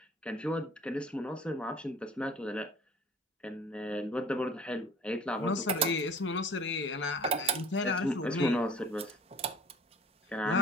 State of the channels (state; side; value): normal; both; correlation 0.47